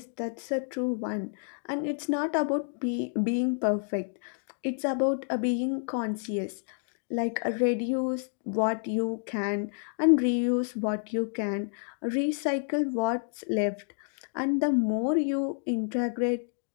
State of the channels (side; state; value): right; silent; digital silence